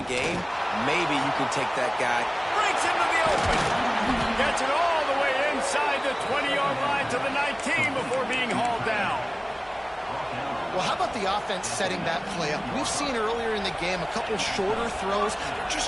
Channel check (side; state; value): both; identical; correlation 1.00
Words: game, maybe you can take that guy. Breaks into the open. Gets it all the way inside the 20-yard line to the 19 before being hauled down. Well, how about the offense setting that play up? We've seen earlier in the game a couple shorter throws. They're